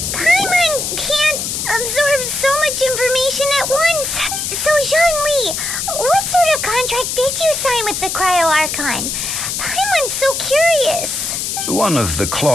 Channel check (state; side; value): noise; left; hiss, 3 dB below the sound